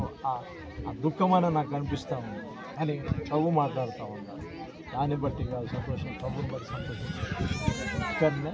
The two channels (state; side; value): identical; both; correlation 1.00